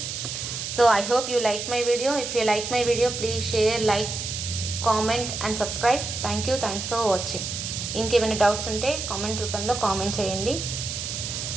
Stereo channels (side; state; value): right; noise; hiss, 5 dB below the sound